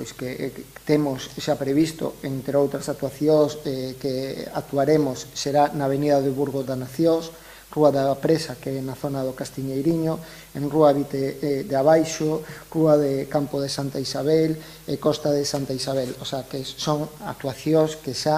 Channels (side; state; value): both; identical; correlation 1.00